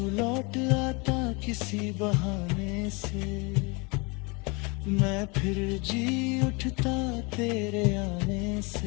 लौट आता किसी बहाने से, मैं फिर जी उठता तेरे आने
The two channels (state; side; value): quieter; right; 29.1 dB